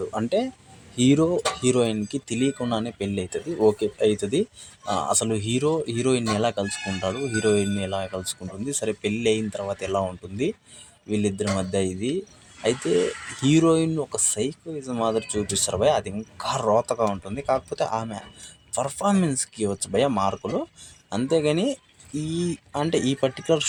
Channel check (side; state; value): both; identical; correlation 1.00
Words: అంటే హీరోయిన్కి తెలియకుండానే పెళ్ళి అవుతుంది, ఓకే అవుతుంది. అసలు హీరోయిన్ని ఎలా కలుసుకుంటాడు, హీరోయిన్ని ఎలా కలుసుకుంటుంది, సరే పెళ్ళి అయిన తర్వాత ఎలా ఉంటుంది వీళ్ళిద్దరి మధ్య ఇది. అయితే హీరోయిన్ ఒక సైకోయిజం మాదిరి చూపిస్తారు భయ, అది ఇంకా రోతగా ఉంటుంది. కాకపోతే ఆమె పర్ఫార్మెన్స్కి ఇవ్వచ్చు భయ మార్కులు, అంతేగాని ఈ పర్టికులర్